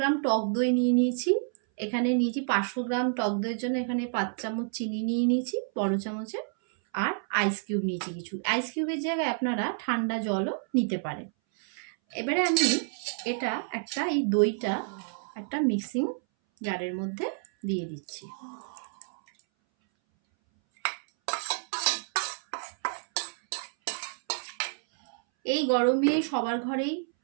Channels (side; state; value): left; silent; 59 dB below the other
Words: টক দই নিয়ে নিয়েছি। এখানে নিয়েছি 500 গ্রাম টক দইয়ের জন্য এখানে 5 চামচ চিনি নিয়ে নিয়েছি বড় চামচে, আর আইস কিউব নিয়েছি কিছু। আইস কিউবের জায়গায় আপনারা ঠান্ডা জলও নিতে পারেন। এবারে আমি এই দইটা একটা মিক্সিং জারের মধ্যে দিয়ে দিচ্ছি। এই গরমে সবার ঘরেই